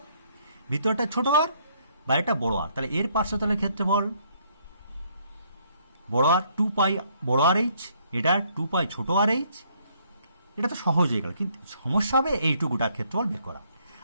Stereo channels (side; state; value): both; inverted; correlation -0.67